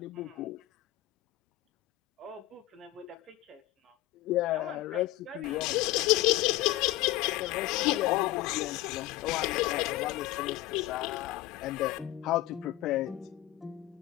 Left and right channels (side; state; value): right; quieter; 16.6 dB